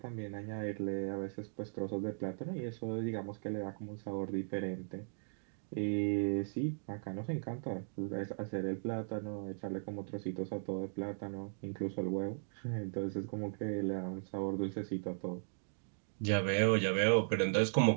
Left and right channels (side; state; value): left; silent; digital silence